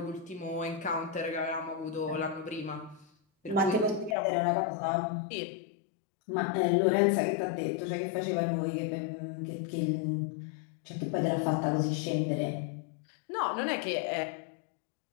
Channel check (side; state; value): right; drops out; at 4.2 s